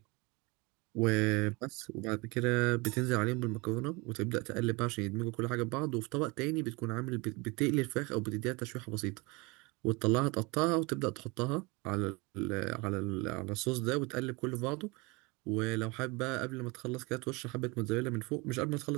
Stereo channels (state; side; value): quieter; left; 26.6 dB